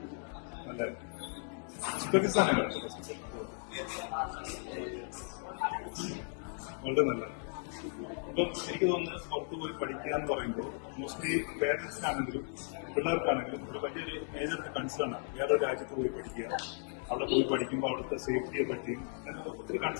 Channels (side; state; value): right; silent; 54 dB below the other